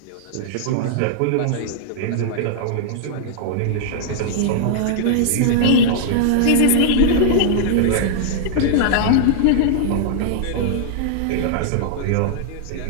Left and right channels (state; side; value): different; both; correlation -0.01